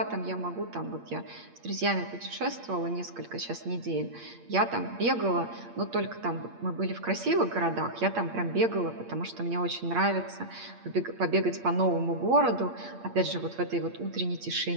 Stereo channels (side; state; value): left; late; 8.6 ms